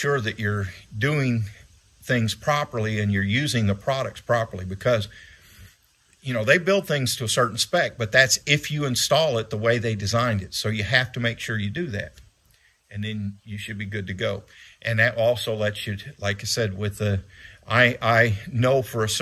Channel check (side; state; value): both; identical; correlation 1.00